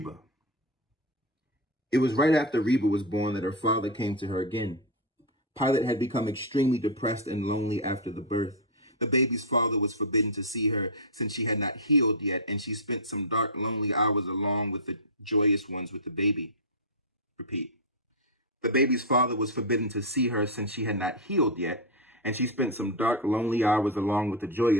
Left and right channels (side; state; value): both; normal; correlation 0.00